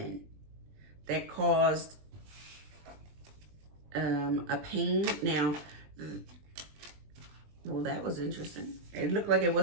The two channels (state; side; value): late; left; 20 ms